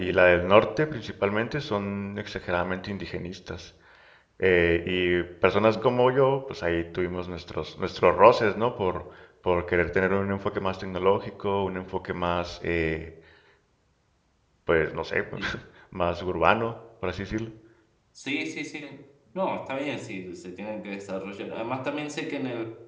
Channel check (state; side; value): identical; both; correlation 1.00